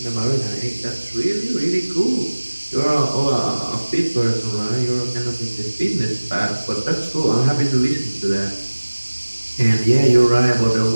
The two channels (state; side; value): inverted; both; correlation -1.00